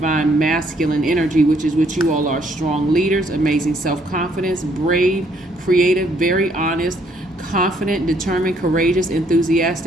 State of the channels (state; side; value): normal; both; correlation 0.68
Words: masculine energy, which is what you all are: strong leaders, amazing self-confidence, brave, creative, very honest, confident, determined, courageous,